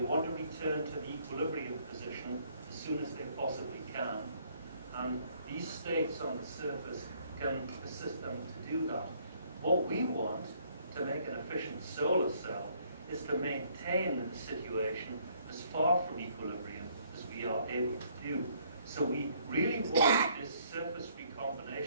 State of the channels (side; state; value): both; inverted; correlation -0.65